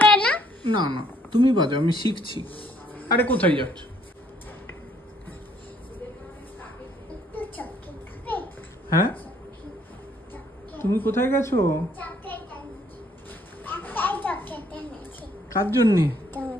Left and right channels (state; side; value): normal; both; correlation 0.66